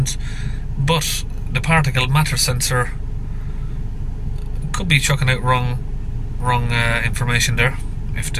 but the particle matter sensor could be chucking out wrong information there if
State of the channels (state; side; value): identical; both; correlation 1.00